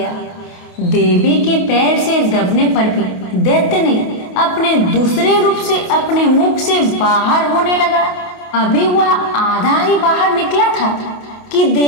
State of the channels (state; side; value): late; right; 28 ms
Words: देवी के पैर से दबने पर भी दैत्य ने अपने दूसरे रूप से अपने मुख से बाहर होने लगा। अभी वह आधा ही बाहर निकला था कि